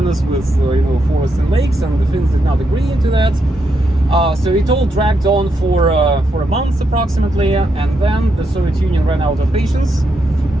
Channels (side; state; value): both; normal; correlation 0.81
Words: with forests and lakes, and the Finns did not agree into that. So it all dragged on for a month approximately, and then the Soviet Union ran out of patience,